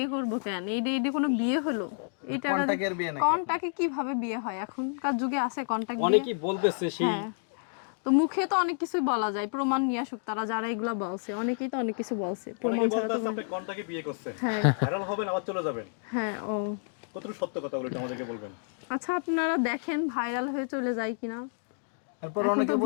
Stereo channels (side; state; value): right; silent; digital silence